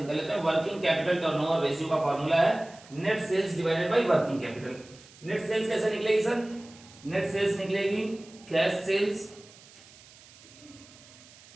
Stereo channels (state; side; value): noise; right; hiss, 23 dB below the sound